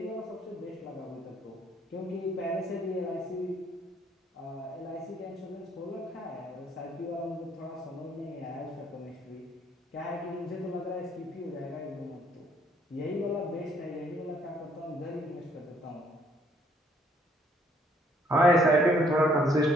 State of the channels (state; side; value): normal; both; correlation 0.64